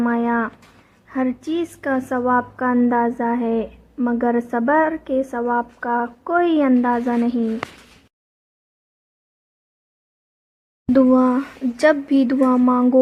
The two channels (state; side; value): identical; both; correlation 1.00